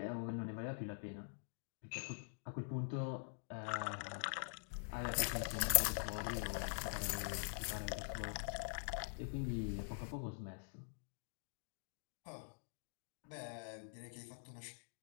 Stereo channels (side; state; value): right; silent; digital silence